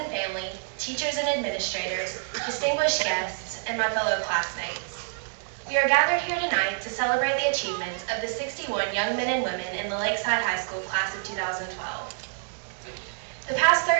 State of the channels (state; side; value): silent; left; digital silence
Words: family, teachers and administrators, distinguished guests, and my fellow classmates. We are gathered here tonight to celebrate the achievements of the 61 young men and women in the Lakeside High School class of 2012. The past